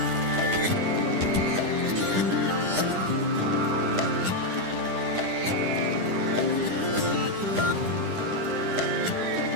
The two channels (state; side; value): late; left; 10 ms